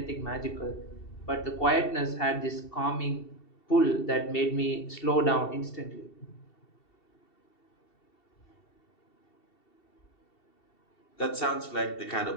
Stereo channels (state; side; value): late; right; 2.7 ms